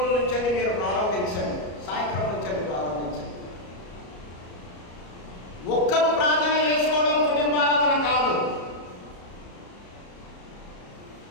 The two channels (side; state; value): right; late; 34 ms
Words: నుంచి మీరు ప్రారంభించండి, సాయంత్రం నుంచి ప్రారంభించండి. ఒక్కరు ప్రార్థన చేసుకోవడం కుటుంబారాధన కాదు.